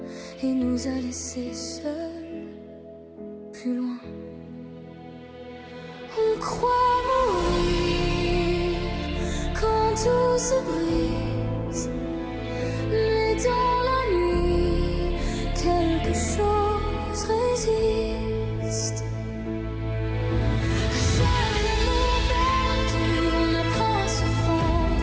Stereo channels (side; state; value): both; identical; correlation 1.00